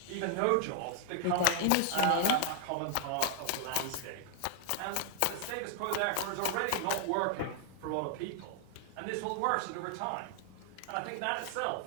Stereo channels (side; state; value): both; different; correlation 0.00